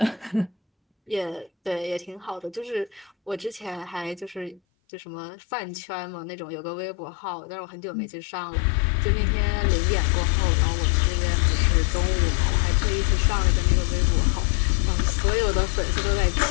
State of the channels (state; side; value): drops out; right; at 4.6 s